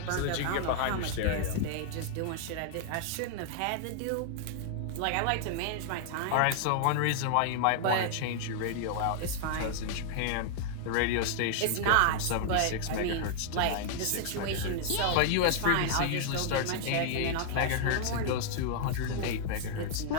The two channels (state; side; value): different; both; correlation -0.01